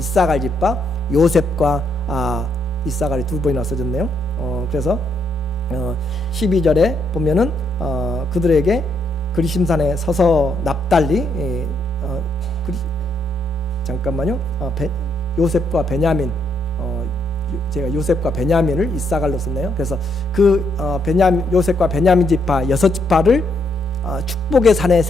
지파, 요셉과 이사갈이 두 번이나 써졌네요. 그래서 12절에 보면은 그들에게 그리심산에 서서 납달리 잠깐만요. 요셉과 베냐민, 제가 요셉과 베냐민을 이사갈로 썼네요. 그래서 그 요셉과 베냐민 지파 6지파를 축복의 산에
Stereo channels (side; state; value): both; normal; correlation 0.75